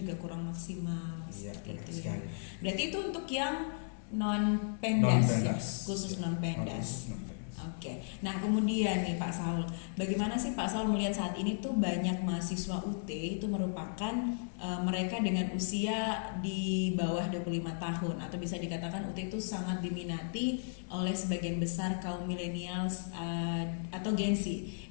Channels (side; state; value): right; silent; digital silence